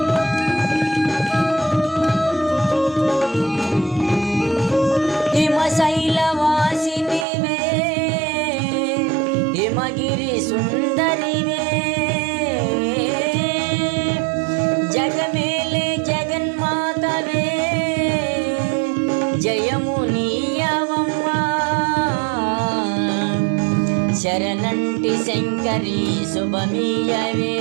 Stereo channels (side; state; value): left; drops out; at 7.2 s